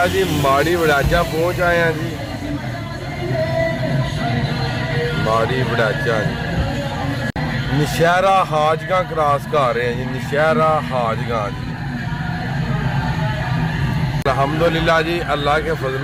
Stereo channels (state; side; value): identical; both; correlation 1.00